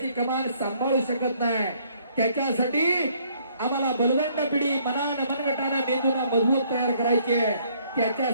कमान सांभाळू शकत नाही. त्याच्यासाठी आम्हाला बलवंत पिढी मनानं मनगटानं मेंदूला मजबूत तयार करायची आहे.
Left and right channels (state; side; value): inverted; both; correlation -0.64